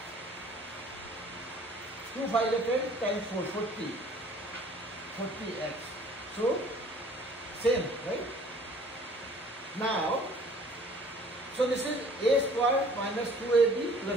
2 5 is 10 times 4, 40. 40x. So, same, right? Now, so this is a square minus 2ab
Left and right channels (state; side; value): normal; both; correlation 0.53